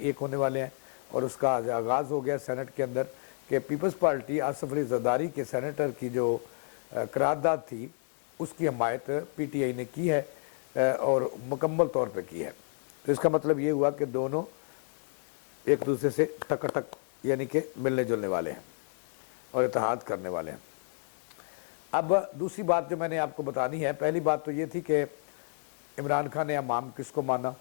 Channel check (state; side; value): silent; right; 57 dB below the other